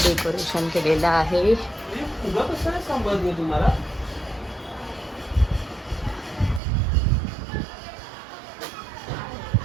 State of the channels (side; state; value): left; drops out; at 6.6 s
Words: डेकोरेशन केलेलं आहे.